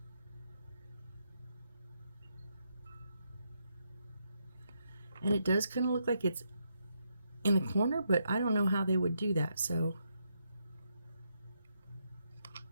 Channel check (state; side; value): inverted; both; correlation -0.80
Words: And it does kind of look like it's in the corner, but I don't know how they would do that, so